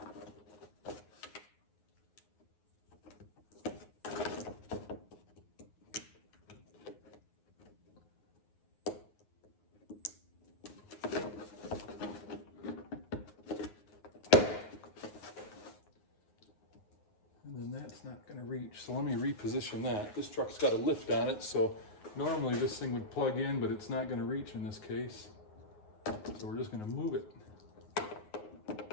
And then that's not going to reach, so let me reposition that. This truck's got a lift on it, so normally this thing would plug in, but it's not going to reach in this case. So we're just going to move it,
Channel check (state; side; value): late; right; 9.5 ms